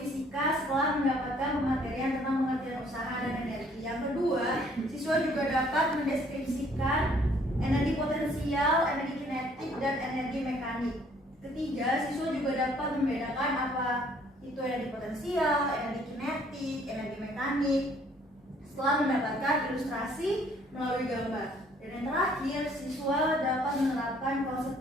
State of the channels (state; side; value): normal; both; correlation 0.61